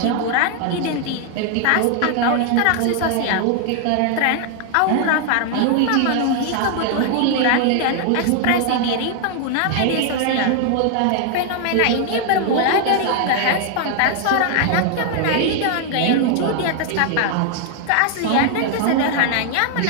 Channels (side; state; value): both; different; correlation 0.00